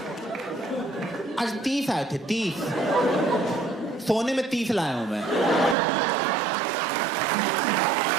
आज 30 आए थे, 30। सोने में 30 लाया हूं मैं।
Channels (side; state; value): left; drops out; at 5.8 s